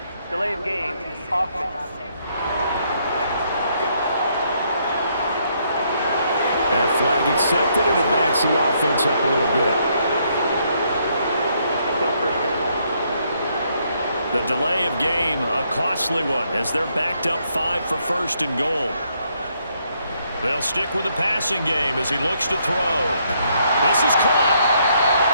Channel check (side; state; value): both; inverted; correlation -0.72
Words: Delay of game, offense. That flag accepted, and it backs the offense up a little bit. Still first down. The delay of game, a costly one, as they're backed up 5 for first and goal. They'll stick with the passing game as he looks to throw. This is caught.